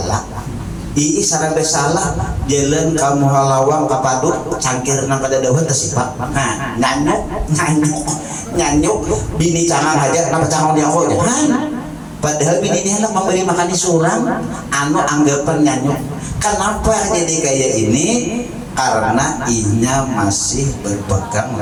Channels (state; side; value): identical; both; correlation 1.00